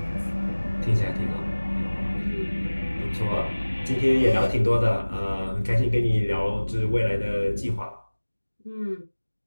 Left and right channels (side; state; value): both; inverted; correlation -1.00